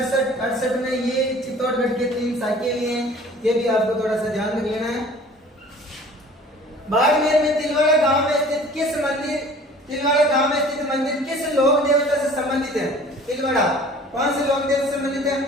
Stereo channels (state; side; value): normal; both; correlation 0.48